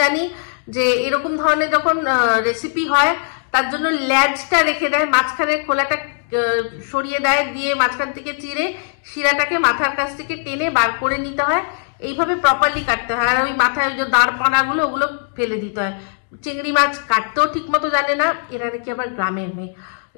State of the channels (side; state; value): right; silent; digital silence